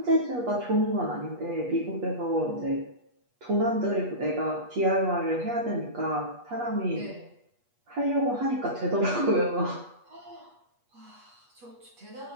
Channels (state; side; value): late; left; 8.3 ms